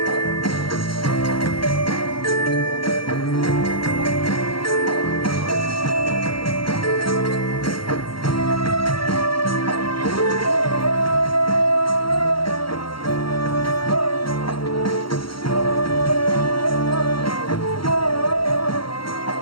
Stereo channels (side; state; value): right; late; 0.74 ms